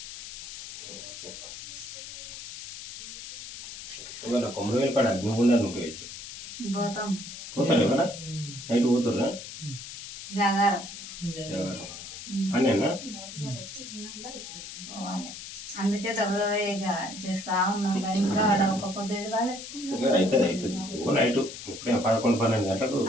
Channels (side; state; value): left; noise; hiss, 11 dB below the sound